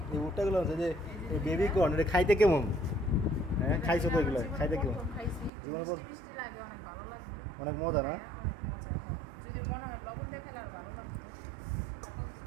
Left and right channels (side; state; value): left; drops out; at 5.5 s